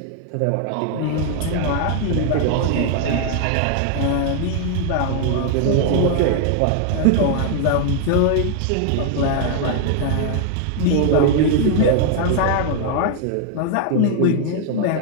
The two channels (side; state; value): both; different; correlation 0.00